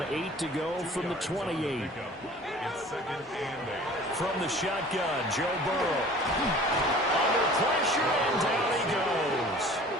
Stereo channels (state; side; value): normal; both; correlation 0.46